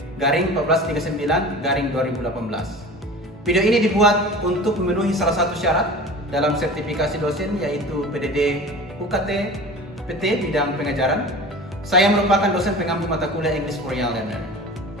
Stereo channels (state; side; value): normal; both; correlation 0.37